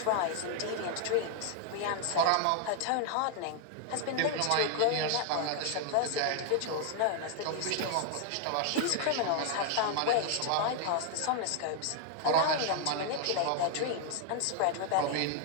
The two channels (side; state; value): both; different; correlation 0.00